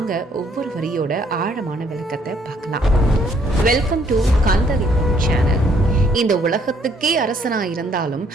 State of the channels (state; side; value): normal; both; correlation 0.66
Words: ஒவ்வொரு வரியோட ஆழமான விளக்கத்தை பார்க்கலாம். Welcome to Kandalingam channel. இந்த உலகத்துக்கே அரசனா இருந்தாலும்